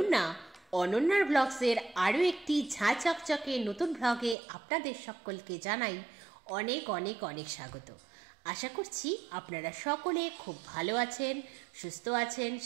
অনন্যার ব্লগসের আরও একটি ঝাঁ চকচকে নতুন ব্লগে আপনাদের সকলকে জানাই অনেক অনেক অনেক স্বাগত। আশা করছি আপনারা সকলে খুব ভালো আছেন, সুস্থ আছেন,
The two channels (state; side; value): drops out; left; at 4.4 s